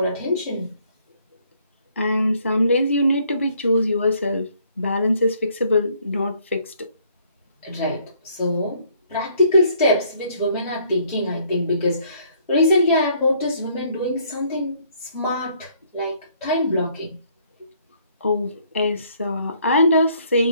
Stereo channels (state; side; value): inverted; both; correlation -0.65